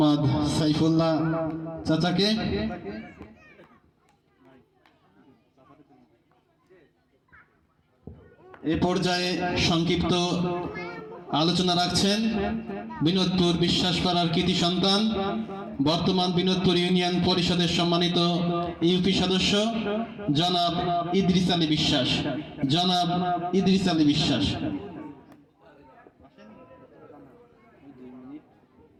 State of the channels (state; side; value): identical; both; correlation 1.00